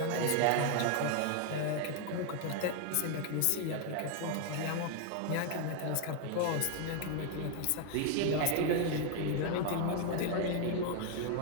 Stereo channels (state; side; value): different; both; correlation 0.00